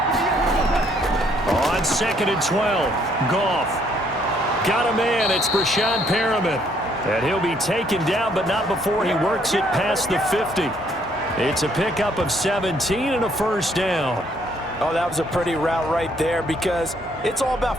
On 2nd and 12, Goff. Got a man, it's Brashad Perriman. And he'll be taken down, but not before he works it past the 50. It's a pickup of 17 and a first down. Oh, that was a pretty route right there because it's all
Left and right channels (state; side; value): normal; both; correlation 0.67